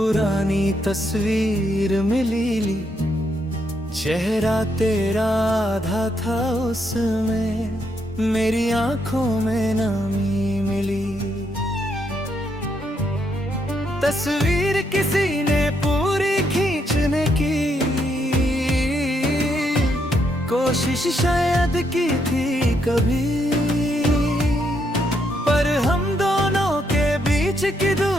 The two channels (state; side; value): normal; both; correlation 0.76